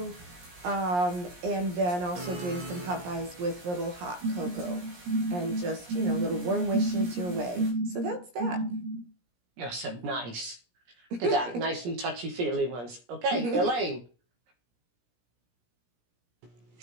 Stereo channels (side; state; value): left; late; 17 ms